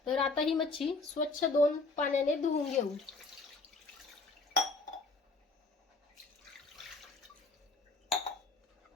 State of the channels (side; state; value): right; quieter; 3.6 dB